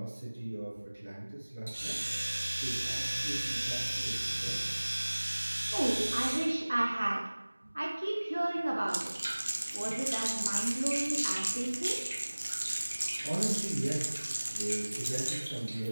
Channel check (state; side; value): inverted; both; correlation -1.00